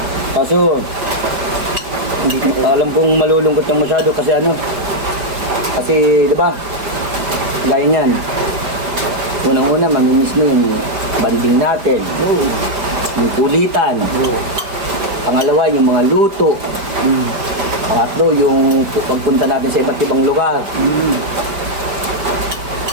Kaso, hindi ko alam kung malulungkot kang masyado kasi ano. Kasi, di ba? Gaya niyan. Unang-una, mamimiss mo yung banding natin. Oo. Yung kulitan. Oo. Pangalawa, yung mga luto. Pangatlo, yung pagpunta natin sa iba't ibang lugar.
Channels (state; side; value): late; left; 5.0 ms